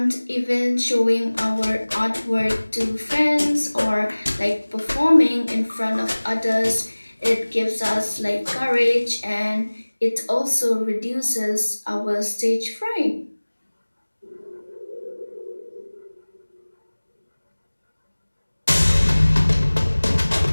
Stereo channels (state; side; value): inverted; both; correlation -1.00